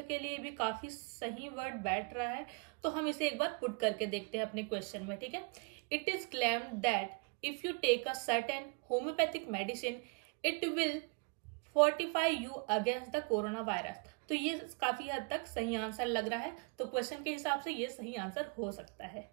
के लिए भी काफी सही वर्ड बैठ रहा है, तो हम इसे एक बार पुट करके देखते हैं अपने क्वेश्चन में। ठीक है, it is claimed that if you take a certain homeopathic medicine it will fortify you against the corona virus. तो ये काफी हद तक सही आंसर लग रहा है, तो क्वेश्चन के हिसाब से ये सही आंसर हो सकता है।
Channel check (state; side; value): quieter; left; 35.7 dB